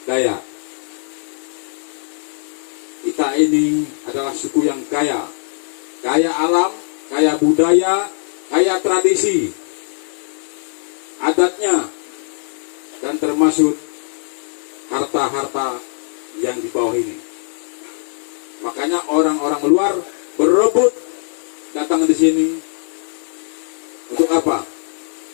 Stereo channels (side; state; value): right; silent; 66 dB below the other